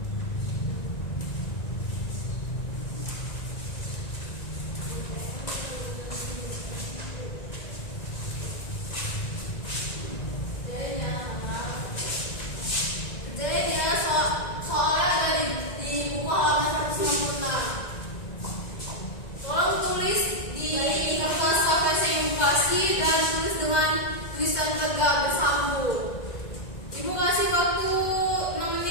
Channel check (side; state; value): right; late; 1.9 ms